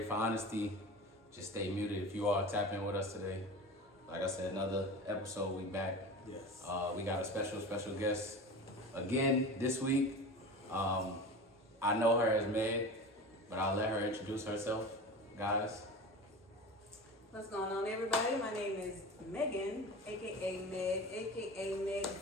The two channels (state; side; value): normal; both; correlation 0.32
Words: for honesty, just stay muted. If you are, tap in with us today. Like I said, another episode. We back. Yes. We got a special guest again this week. I know her as Meg, but I'll let her introduce herself. Guys. What's going on, everybody? My name is Megan, aka Meg, aka Meg